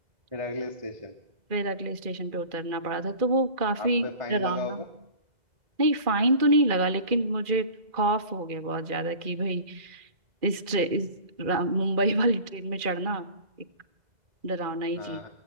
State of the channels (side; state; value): left; late; 2.4 ms